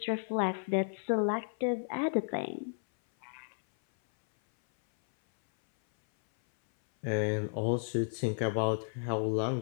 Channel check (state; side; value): silent; right; 56 dB below the other